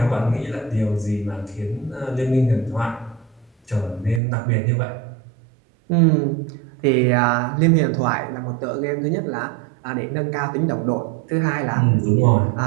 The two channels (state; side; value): drops out; left; at 4.2 s